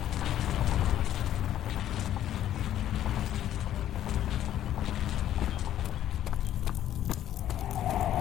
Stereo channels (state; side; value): quieter; right; 11.7 dB